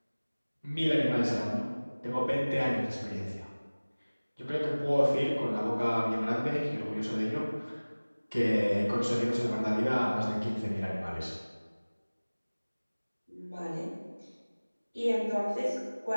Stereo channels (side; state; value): both; inverted; correlation -1.00